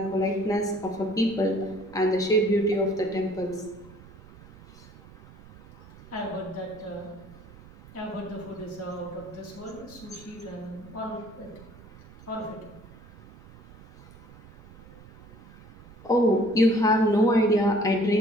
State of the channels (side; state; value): right; noise; rumble, 21 dB below the sound